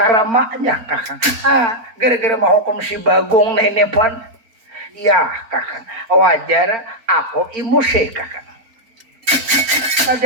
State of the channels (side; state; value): left; late; 4.4 ms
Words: kakak. Gara-gara mau hukum si Bagong nenek pun ya kakak wajar aku emosi kakak.